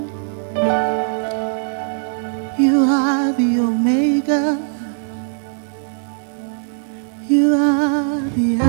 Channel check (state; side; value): silent; left; 60 dB below the other